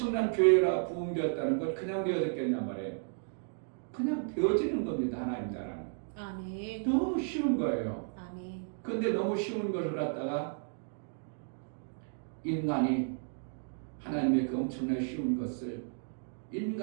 교회라 부흥되었다는 걸 그냥 되어졌겠냔 말이에요. 그냥 되어지는 겁니다. 하나님 나라는. 아멘. 너무 쉬운 거예요. 아멘. 근데 너무 쉬운 것을 갖다가 인간이 하나님의 그 엄청나게 쉬운 것을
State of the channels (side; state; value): left; silent; digital silence